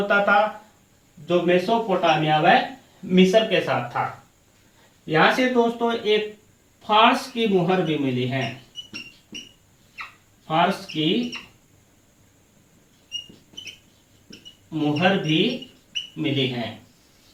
था जो मेसोपोटामिया व मिस्र के साथ था। यहां से दोस्तों एक फारस की मुहर भी मिली है, फारस की मुहर भी मिली है।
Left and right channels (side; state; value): both; identical; correlation 1.00